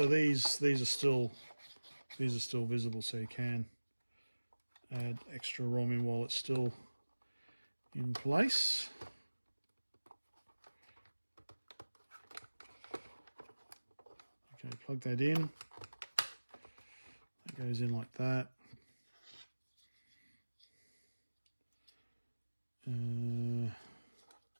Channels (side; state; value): both; inverted; correlation -1.00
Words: these are still visible, so you can add extra ROM in while it's still in place. Okay, plug that in. That goes in like that.